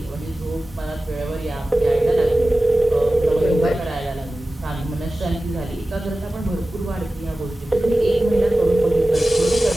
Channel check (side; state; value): both; normal; correlation 0.96